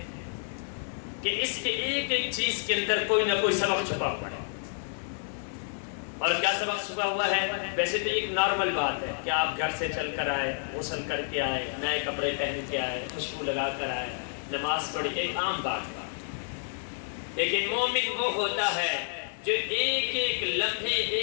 کہ اس کے ایک ایک چیز کے اندر کوئی نہ کوئی سبق چھپا ہوا ہے۔ اور کیا سبق چھپا ہوا ہے؟ ویسے تو ایک نارمل بات ہے کہ آپ گھر سے چل کر آئے، غسل کر کے آئے، نئے کپڑے پہن کے آئے، خوشبو لگا کر آئے، نماز پڑھی، ایک عام بات ہے۔ لیکن مومن وہ ہوتا ہے جو ایک ایک لمحے،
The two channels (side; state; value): right; silent; digital silence